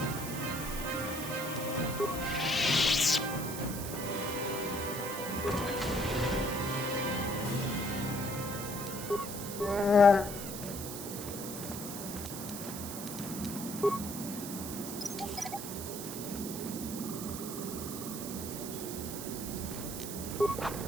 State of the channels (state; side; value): noise; right; hiss, 7 dB below the sound